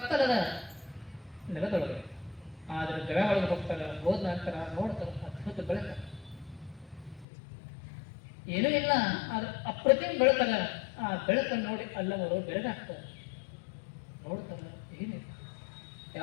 ನೆಲದೊಳಗೆ. ಆದ್ರೆ ಗವೆ ಒಳಗೆ ಹೋಗ್ತಾರ. ಹೋದ ನಂತರ ನೋಡ್ತಾರ ಅದ್ಭುತ ಬೆಳಕ, ಏನೂ ಇಲ್ಲ, ಆದ್ರೆ ಅಪ್ರತಿಮ ಬೆಳಕಲ್ಲ. ಆ ಬೆಳಕನ್ನು ನೋಡಿ ಅಲ್ಲವರು ಬೆಳಗಾಗ್ತಾರೆ. ನೋಡ್ತಾರ, ಏನಿಲ್ಲ,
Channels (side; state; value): right; drops out; at 7.2 s